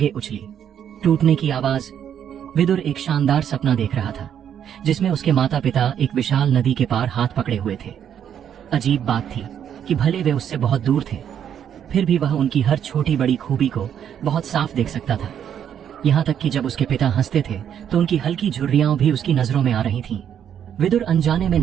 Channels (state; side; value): quieter; left; 9.1 dB